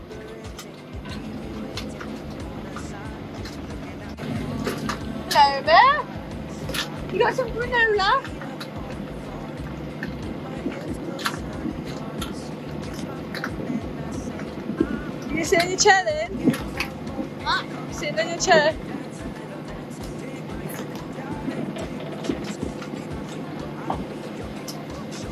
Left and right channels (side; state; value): both; identical; correlation 1.00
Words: Hello, Bear. You got some granola? You sit in your chair then? What? Sitting in your chair.